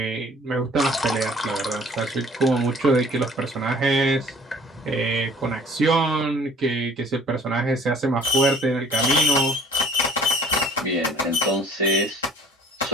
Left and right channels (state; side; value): normal; both; correlation 0.52